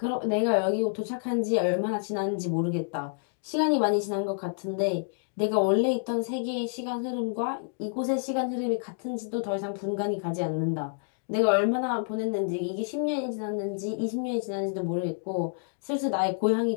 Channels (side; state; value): right; silent; digital silence